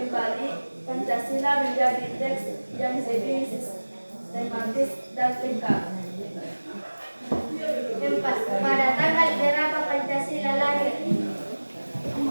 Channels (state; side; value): inverted; both; correlation -1.00